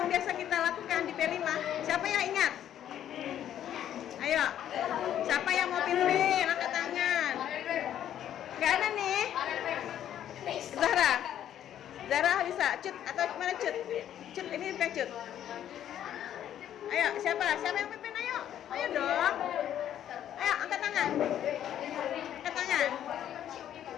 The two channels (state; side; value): quieter; right; 10.8 dB